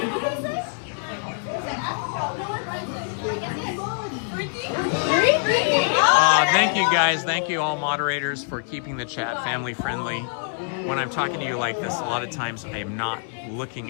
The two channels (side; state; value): right; silent; 62 dB below the other